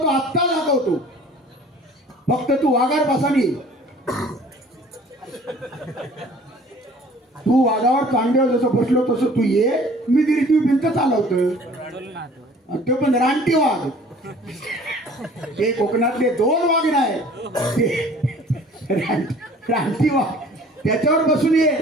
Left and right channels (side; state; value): both; normal; correlation 0.50